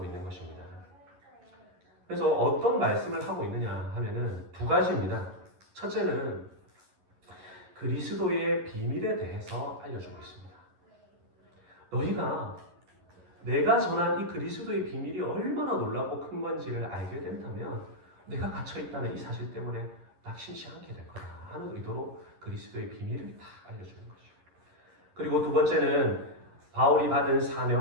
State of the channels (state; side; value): late; left; 11 ms